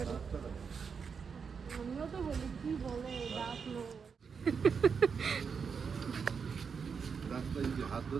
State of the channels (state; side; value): quieter; left; 6.0 dB